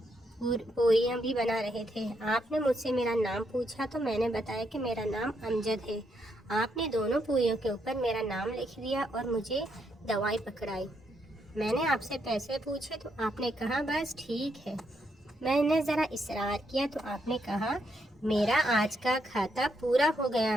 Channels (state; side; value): normal; both; correlation 0.77